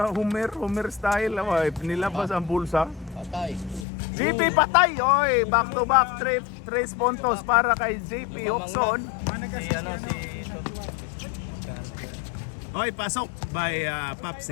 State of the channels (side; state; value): right; drops out; at 3.9 s